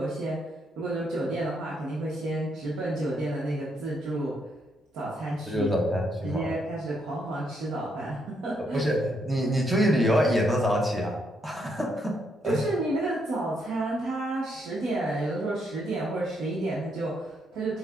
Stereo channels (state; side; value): normal; both; correlation 0.76